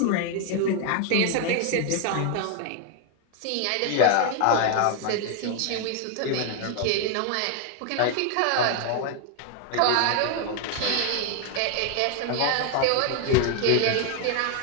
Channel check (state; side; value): different; both; correlation 0.01